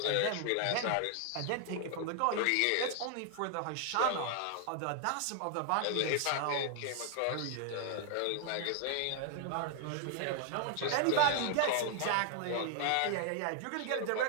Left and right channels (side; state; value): both; different; correlation 0.00